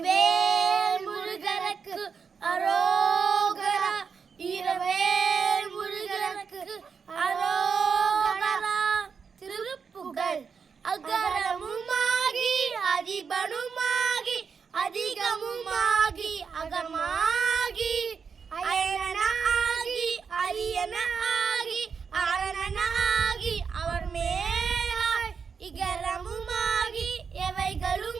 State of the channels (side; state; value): left; quieter; 6.0 dB